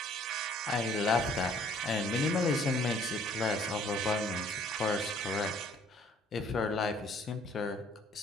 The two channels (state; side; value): normal; both; correlation 0.59